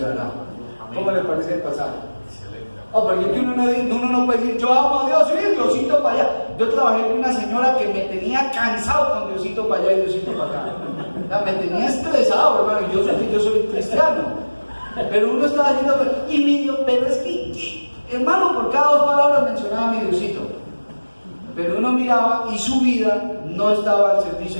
¿Cómo le parece el pasaje? Oh, porque uno no puede decir: yo amo a Dios, sí, Diosito para allá. Yo trabajé con una señora que me tenía cansado con Diosito para allá y Diosito para acá. sea, me tenía estresado, hermano. Yo sé que yo soy cristiano, pero uno estaba diciendo, y mi Dios, pero es que, hermano, por cada 2 palabras mencionaba a mi Diosito. Pero uno miraba y su vida no estaba al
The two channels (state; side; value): inverted; both; correlation -1.00